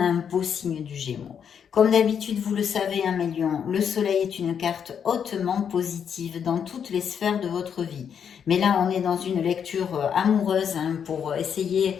a un beau signe du Gémeaux. Comme d'habitude, vous le savez, hein, mes lions, le soleil est une carte hautement positive dans toutes les sphères de votre vie. Mais là, on est dans une lecture amoureuse hein, pour essayer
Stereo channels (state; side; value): quieter; right; 7.7 dB